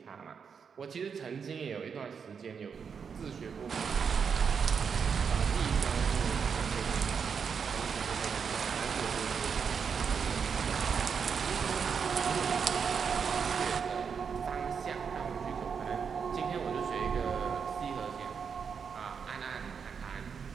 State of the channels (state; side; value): quieter; left; 6.4 dB